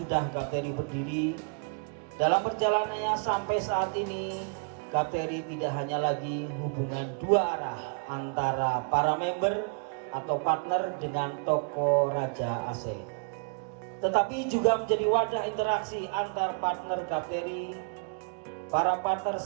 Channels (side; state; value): left; quieter; 38.4 dB